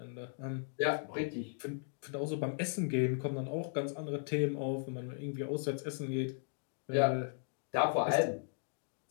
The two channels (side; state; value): right; silent; digital silence